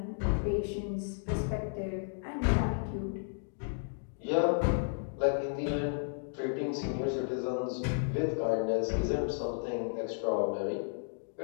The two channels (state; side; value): silent; right; digital silence